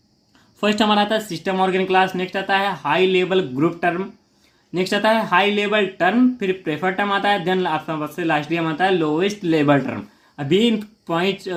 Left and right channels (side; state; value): both; identical; correlation 1.00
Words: फर्स्ट हमारा आता है सिस्टम ऑर्गन क्लास, नेक्स्ट आता है high level group term, next आता है हाई लेवल टर्म, फिर प्रेफर टर्म आता है, देन सबसे लास्ट में आता है लोवेस्ट लेवल टर्म। अभी इन पॉइंट